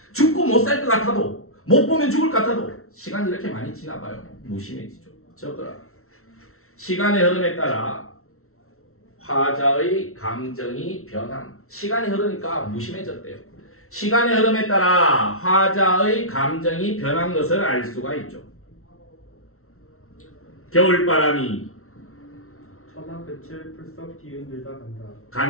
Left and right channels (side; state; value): right; late; 0.63 ms